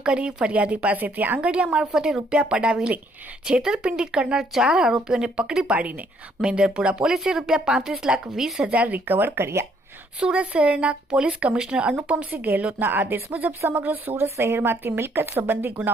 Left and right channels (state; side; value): normal; both; correlation 0.67